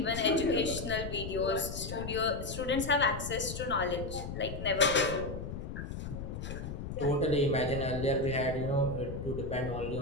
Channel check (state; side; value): noise; left; rumble, 7 dB below the sound